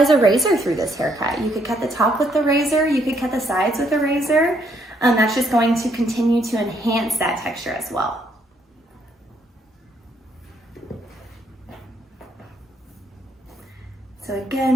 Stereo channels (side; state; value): both; normal; correlation 0.72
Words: a razor through this haircut. You could cut the top with the razor, you could cut the sides with a razor. That's just going to continue to enhance that texture as well. So